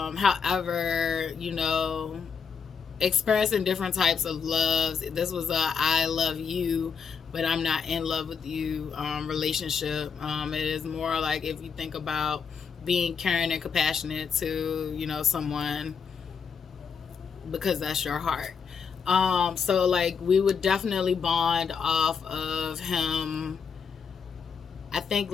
experiencing different types of loves. This was a I love you, but I'm not in love with you relationship. It is more like if you think about being caring and compassionate to, someone because that's your heart. So like we would definitely bond off of him. I think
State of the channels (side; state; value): right; quieter; 6.2 dB